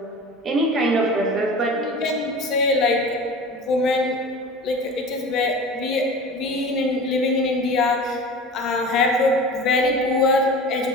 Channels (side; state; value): both; normal; correlation 0.36